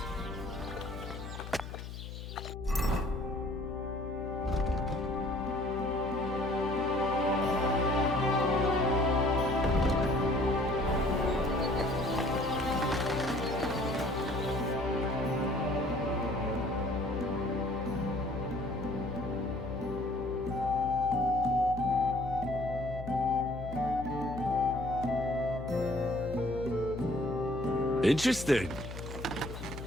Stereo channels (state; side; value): noise; left; hum, 9 dB below the sound